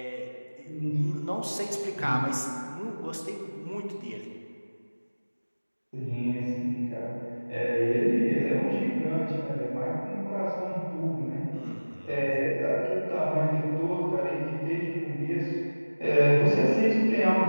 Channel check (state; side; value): inverted; both; correlation -1.00